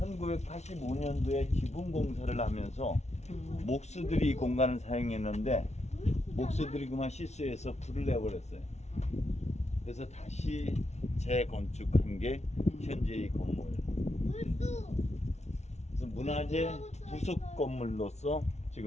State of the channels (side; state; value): right; late; 0.32 ms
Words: 지붕 공사를 하면서 목수들이 이 공간을 사용했는데 목수들이 그만 실수해서 불을 내버렸어요. 그래서 다시 재건축한 게 현재 이 건물. 그래서 문화재 부속 건물로서